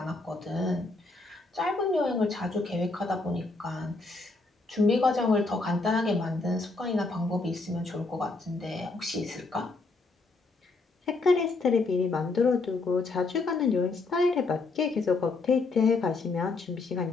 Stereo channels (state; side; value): quieter; right; 3.6 dB